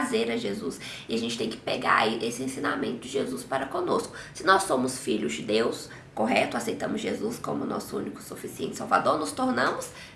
a Jesus. E a gente tem que pegar esse ensinamento de Jesus para conosco. Se nós somos filhos de Deus, correto? Aceitamos Jesus como nosso único e suficiente Salvador, nos tornamos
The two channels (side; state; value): both; identical; correlation 1.00